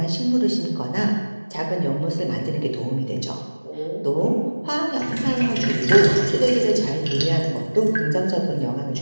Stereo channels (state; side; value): inverted; both; correlation -1.00